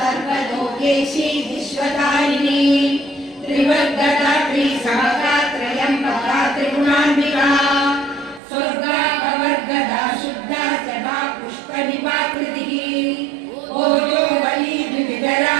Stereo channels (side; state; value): left; drops out; at 8.4 s